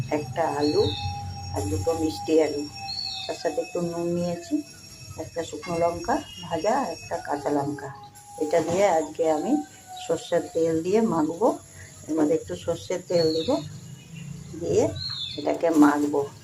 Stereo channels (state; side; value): identical; both; correlation 1.00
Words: একটা আলু, আর দুটো মিষ্টি আলু। তার সাথে একটু নুন নিয়েছি, একটা শুকনো লঙ্কা ভাজা, একটা কাঁচা লঙ্কা। এটা দিয়ে আজকে আমি সর্ষের তেল দিয়ে মাখবো। এর মধ্যে একটু সর্ষের তেল দিব, দিয়ে এটাকে মাখবো।